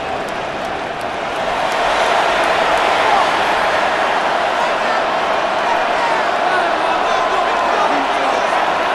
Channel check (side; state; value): both; identical; correlation 1.00